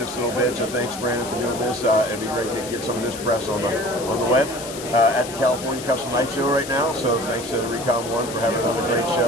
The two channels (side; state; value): left; noise; hiss, 11 dB below the sound